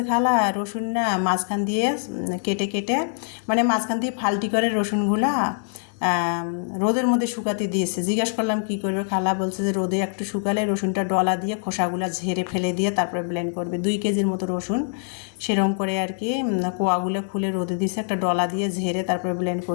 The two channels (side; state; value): right; silent; digital silence